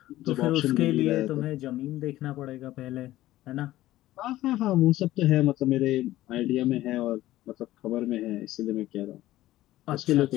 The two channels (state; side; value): quieter; right; 15.5 dB